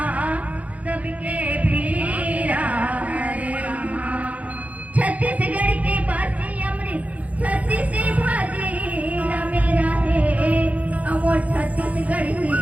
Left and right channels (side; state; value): left; late; 0.069 ms